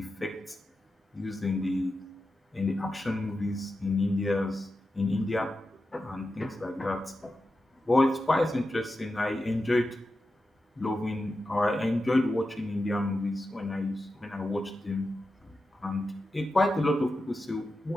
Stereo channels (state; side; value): normal; both; correlation 0.91